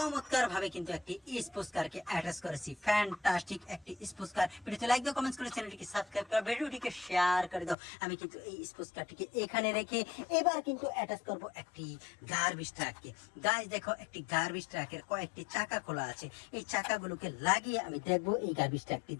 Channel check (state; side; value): drops out; right; at 7.8 s